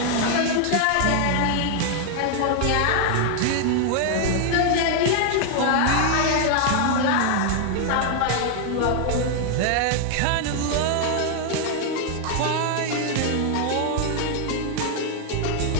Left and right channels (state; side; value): different; both; correlation 0.00